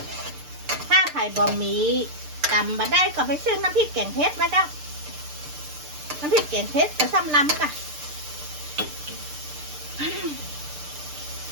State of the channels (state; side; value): late; left; 6.7 ms